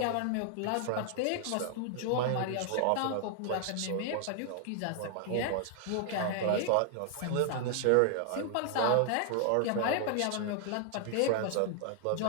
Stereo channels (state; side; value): different; both; correlation 0.00